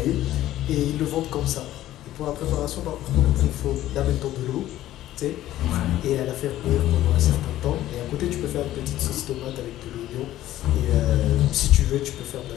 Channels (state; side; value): quieter; right; 14.0 dB